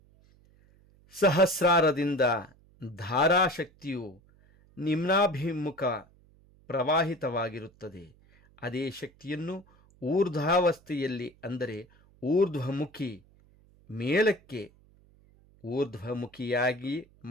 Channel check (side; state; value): right; noise; hum, 29 dB below the sound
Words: ಸಹಸ್ರಾರದಿಂದ ಧಾರಾಶಕ್ತಿಯು ನಿಮ್ನಾಭಿಮುಖ ಪ್ರವಾಹಿತವಾಗಿರುತ್ತದೆ. ಅದೇ ಶಕ್ತಿಯನ್ನು ಊರ್ಧ್ವಾವಸ್ಥೆಯಲ್ಲಿ ಅಂದರೆ ಊರ್ಧ್ವಮುಖಿ ಮೇಲಕ್ಕೆ ಊರ್ಧ್ವಮುಖಿಯಾಗಿ